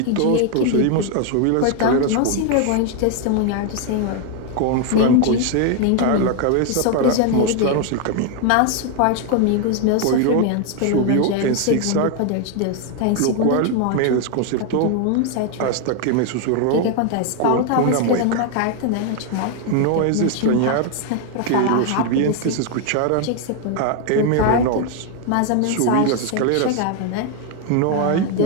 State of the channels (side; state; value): both; different; correlation 0.01